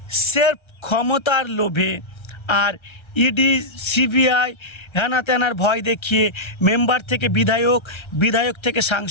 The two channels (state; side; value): late; right; 1.3 ms